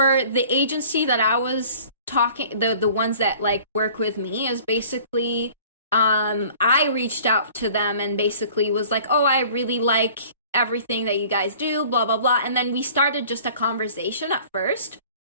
the agency that I was talking, the ones that like work with me is basically, I reached out to them and basically was like, oh, I really like everything that you guys do, blah, blah, blah. And then we started just a conversation at first.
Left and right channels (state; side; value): inverted; both; correlation -0.49